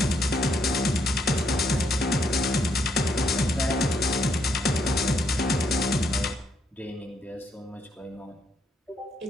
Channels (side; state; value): both; normal; correlation 0.74